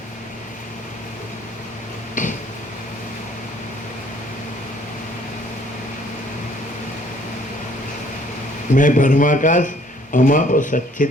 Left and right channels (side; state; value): both; normal; correlation 0.60